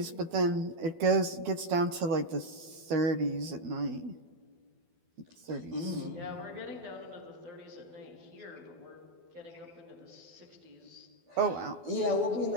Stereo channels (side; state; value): left; late; 12 ms